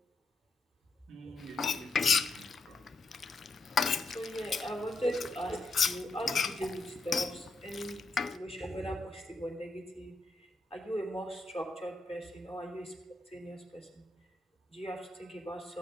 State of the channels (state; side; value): quieter; right; 3.2 dB